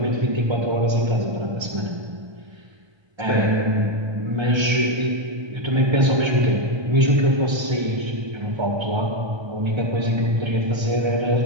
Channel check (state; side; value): late; left; 1.3 ms